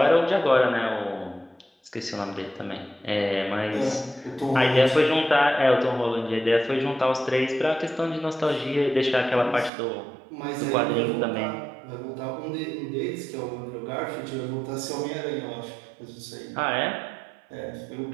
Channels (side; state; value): left; drops out; at 9.7 s